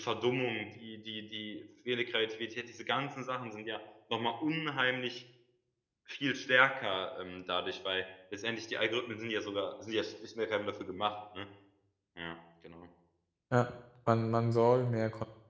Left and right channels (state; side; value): identical; both; correlation 1.00